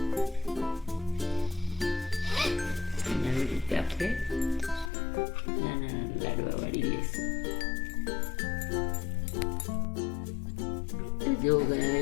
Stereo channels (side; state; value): right; drops out; at 4.9 s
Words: આવી રીતે આપણે નાના લાડવા વાળી લઈશું. જો